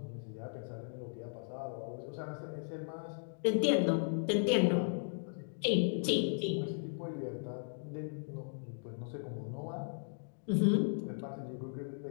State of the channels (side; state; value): right; silent; digital silence